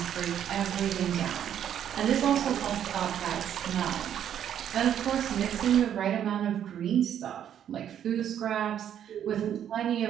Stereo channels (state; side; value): quieter; left; 9.8 dB